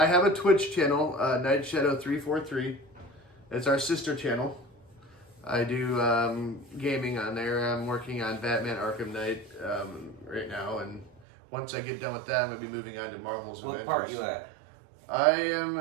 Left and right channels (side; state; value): left; drops out; at 11.2 s